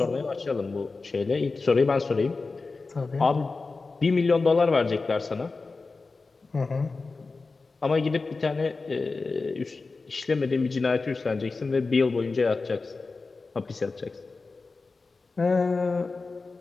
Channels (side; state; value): right; quieter; 3.9 dB